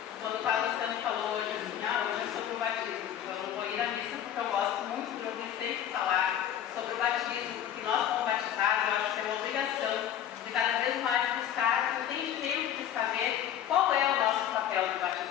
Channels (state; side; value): quieter; right; 10.4 dB